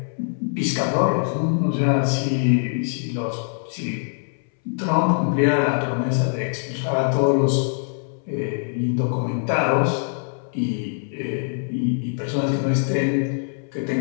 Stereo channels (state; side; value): silent; right; 63 dB below the other